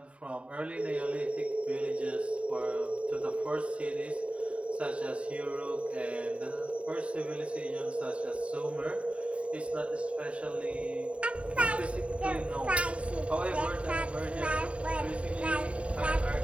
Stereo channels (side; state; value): left; late; 0.062 ms